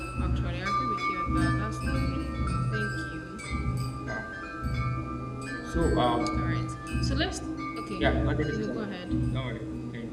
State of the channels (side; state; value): both; identical; correlation 1.00